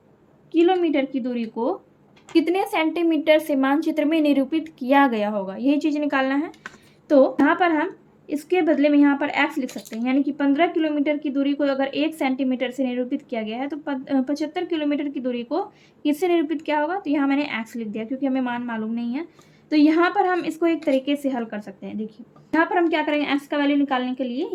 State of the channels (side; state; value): both; identical; correlation 1.00